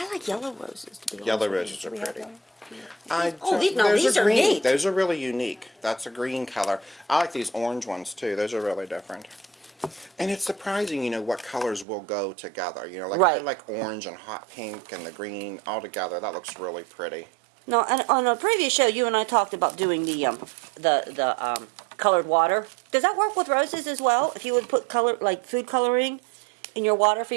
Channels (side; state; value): left; drops out; at 11.9 s